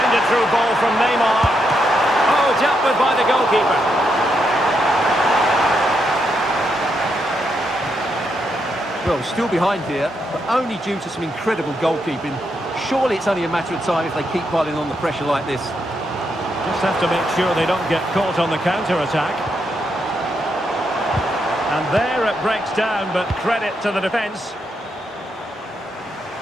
through ball from Neymar. Oh, dealt with by the goalkeeper. Well, still behind here, but only due to some incredible goalkeeping. Surely it's only a matter of time if they keep piling on the pressure like this. Just have to make sure they don't get caught on the counter-attack. And there it breaks down, but credit to the defence.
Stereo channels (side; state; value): both; normal; correlation 0.80